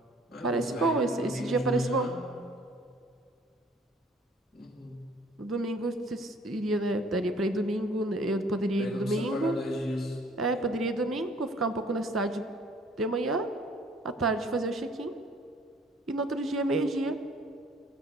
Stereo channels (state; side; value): normal; both; correlation 0.56